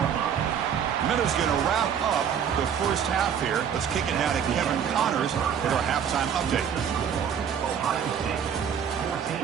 Miller's going to wrap up the first half here. Let's kick it now to Kevin Connors for our halftime update.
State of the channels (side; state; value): left; quieter; 8.1 dB